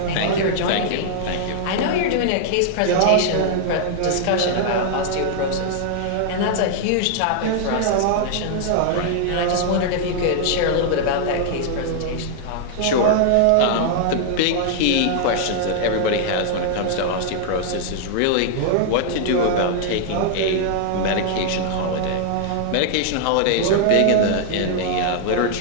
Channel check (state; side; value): different; both; correlation 0.00